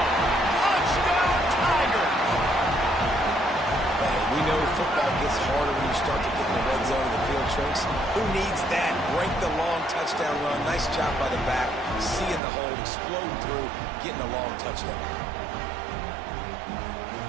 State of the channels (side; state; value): left; drops out; at 12.4 s